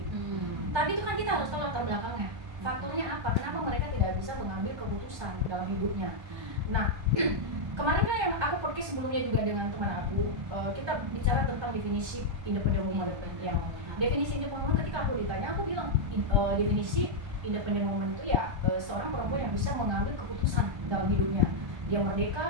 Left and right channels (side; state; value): left; late; 1.3 ms